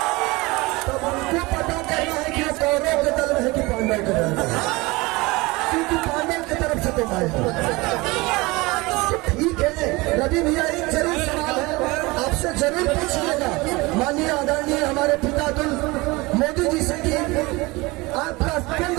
तब उनको पता करना है कि कौरव के दल में है कि पांडव के दल में, क्योंकि पांडव की तरफ से तो मैं हूँ। ठीक है रवि भैया, एक जरूर सवाल है आपसे जरूर पूछिएगा माननीय आदरणीय हमारे पितातुल मोदी जी से कि आपका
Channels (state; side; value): quieter; left; 23.0 dB